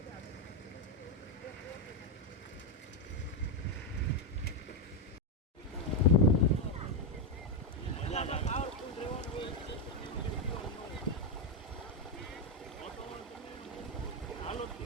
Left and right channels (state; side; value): normal; both; correlation 0.05